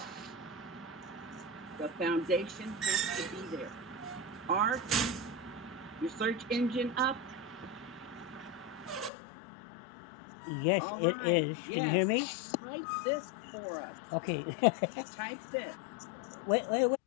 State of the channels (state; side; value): drops out; right; at 9.1 s